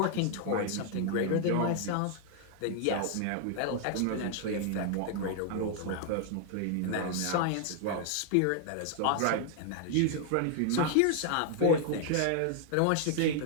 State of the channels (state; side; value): different; both; correlation 0.00